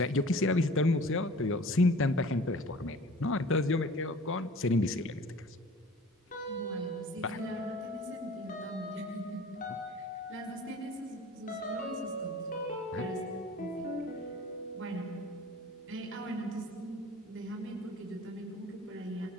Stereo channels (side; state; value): both; normal; correlation 0.45